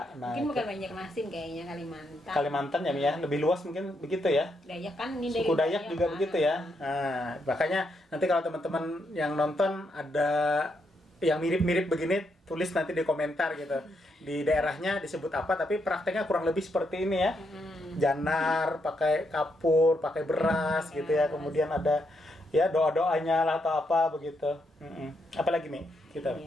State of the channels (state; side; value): normal; both; correlation 0.79